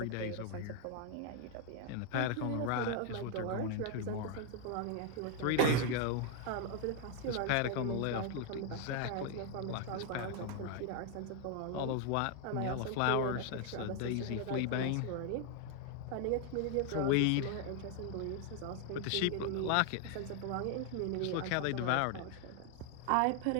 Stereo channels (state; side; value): different; both; correlation 0.00